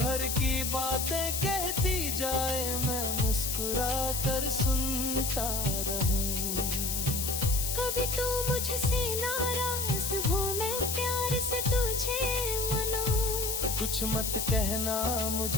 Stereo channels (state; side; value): noise; left; hiss, 1 dB below the sound